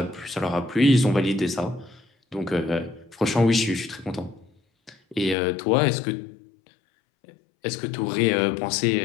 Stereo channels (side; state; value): right; drops out; at 5.4 s